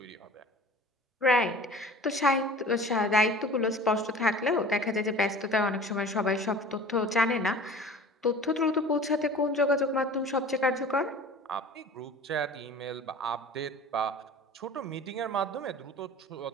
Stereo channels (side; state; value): both; normal; correlation 0.42